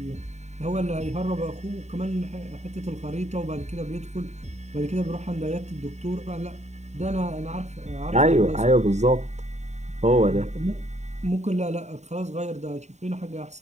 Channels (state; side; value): late; left; 0.33 ms